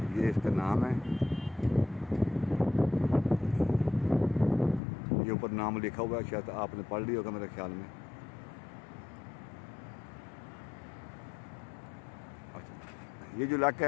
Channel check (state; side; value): drops out; right; at 4.8 s